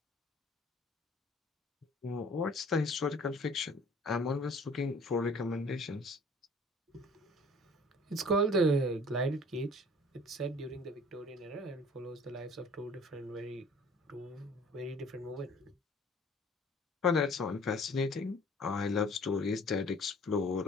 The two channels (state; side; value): normal; both; correlation 0.51